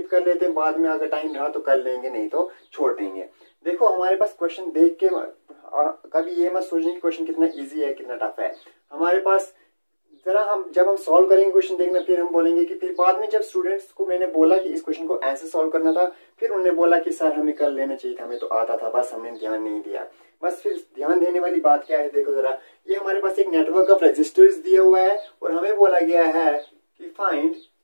कर लेते हैं, बाद में अगर टाइम रहा तो कर लेंगे, नहीं तो छोड़ देंगे। देखो हमारे पास क्वेश्चन देख के कभी ये मत सोचें कि क्वेश्चन कितना इजी है कितना टफ है। हमारे पास जरा जब हम सॉल्व करेंगे क्वेश्चन देखना, फिर हम बोलेंगे कि फिर बाद में जब स्टूडेंट्स को मैंने बोला कि इस क्वेश्चन को ऐसे सॉल्व करना था, फिर उन्होंने बोला कि सर हमें कर लेना चाहिए था, हमें तो आता था, बस हमने ध्यान नहीं दिया। बस फिर ध्यान देने वाली बात क्या है, देखो जरा, ये हमारे पास एक नेटवर्क ऑफ रजिस्टर्स दिया हुआ है, और हमें बोला गया है कि find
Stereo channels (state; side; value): inverted; both; correlation -1.00